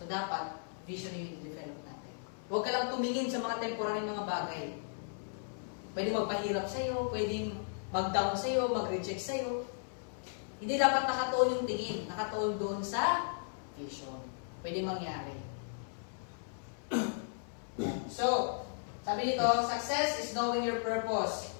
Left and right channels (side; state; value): right; silent; 54 dB below the other